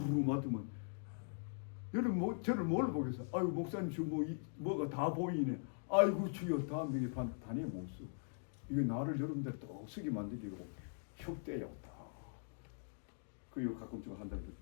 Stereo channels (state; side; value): silent; right; digital silence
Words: 맡으면 여러분 저를 뭘 보겠어요? 아이고 목사님 저 뭐가 다 보이네. 아이고 주여 다음 명에 단에 못 써. 이거 나를 여러분들 떡쓰게 만들기로 혁대야 다. 그리고 가끔 좀 한다고